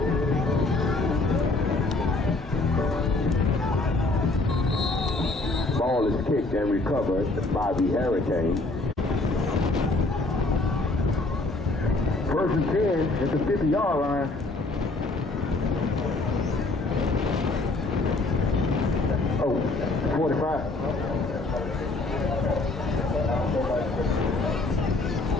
Ball is kicked and recovered by the Hurricanes. First and 10 at the 50-yard line. Oh, 45.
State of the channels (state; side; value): quieter; right; 3.1 dB